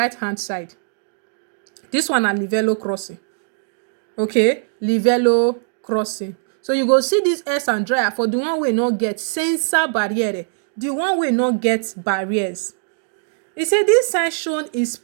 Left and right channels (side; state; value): left; silent; digital silence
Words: hand side. This one na livello crossing. Okay, livello crossing. So you go see this S Andrea for the one wey no get senza barriere, the one wey no get barriers. He said this sign shown is